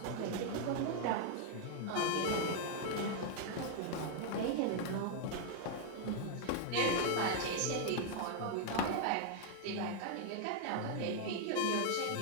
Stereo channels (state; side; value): different; both; correlation 0.00